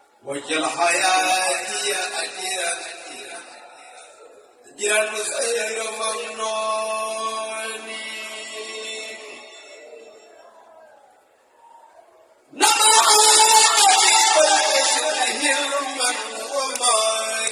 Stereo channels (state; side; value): identical; both; correlation 1.00